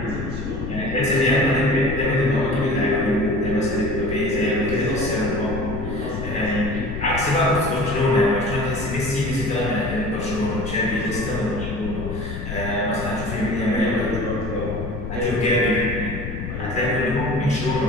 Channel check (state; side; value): noise; left; rumble, 6 dB below the sound